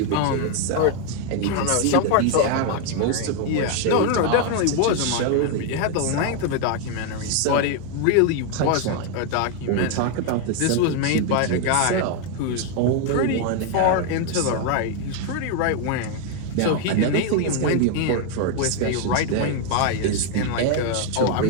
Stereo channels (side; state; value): both; different; correlation 0.01